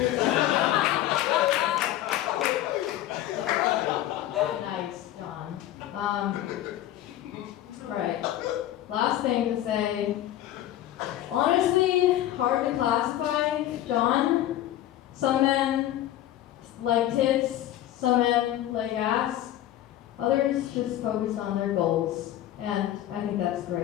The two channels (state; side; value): quieter; right; 13.2 dB